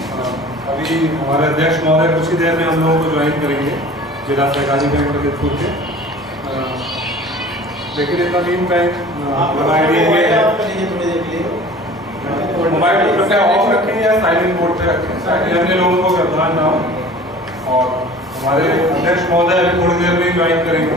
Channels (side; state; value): both; normal; correlation 0.44